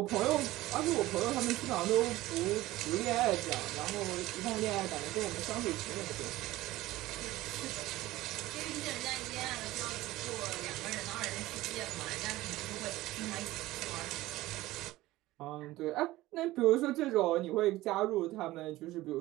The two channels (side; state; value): left; quieter; 17.3 dB